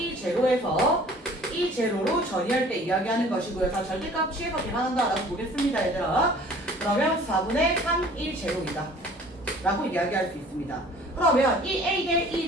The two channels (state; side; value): normal; both; correlation 0.50